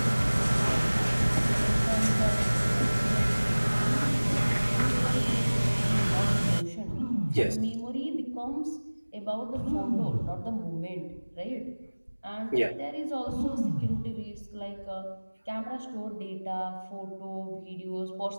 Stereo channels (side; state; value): both; inverted; correlation -1.00